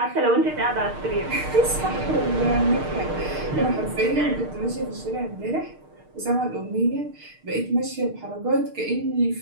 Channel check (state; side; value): late; left; 6.6 ms